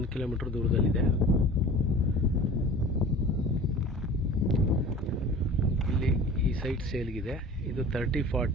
ಕಿಲೋಮೀಟರ್ ದೂರದಲ್ಲಿದೆ. ಇಲ್ಲಿ ಈ ಸೈಟ್ ಸೇಲ್ಗಿದೆ. ಇದು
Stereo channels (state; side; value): normal; both; correlation 0.41